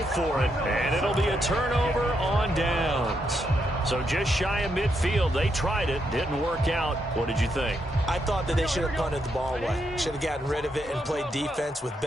for it. And it'll be a turnover on downs. So just shy of midfield. They tried it. Didn't work out. What did you think? I thought that they should have punted the ball away. Should have gotten rid of it and played defense with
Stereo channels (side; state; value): both; normal; correlation 0.80